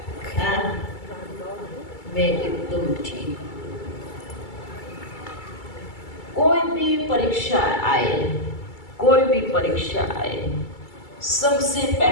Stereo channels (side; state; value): right; late; 2.3 ms